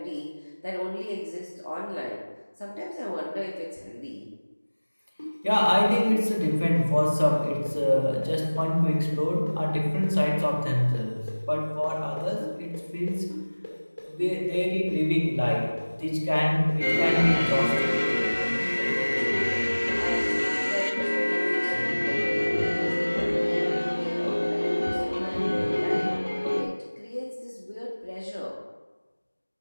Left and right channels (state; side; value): inverted; both; correlation -1.00